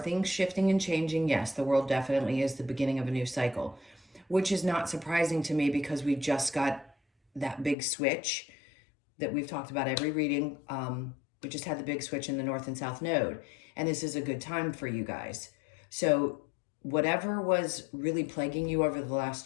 shifting and changing? Yes, the World definitely is the beginning of a new cycle, which is not surprising to me because we just got that big switch that we've talked about every reading. We just had the big switch in the North and South Node, and this is a good time for you guys. So whatever was really plaguing you over the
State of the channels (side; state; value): right; drops out; at 7.8 s